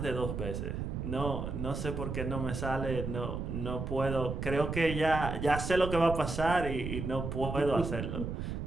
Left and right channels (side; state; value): right; noise; rumble, 4 dB below the sound